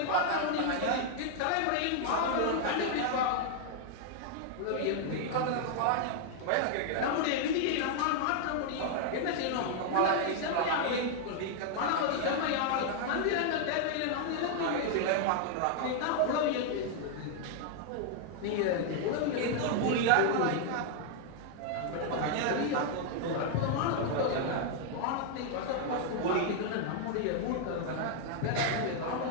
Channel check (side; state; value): both; different; correlation 0.00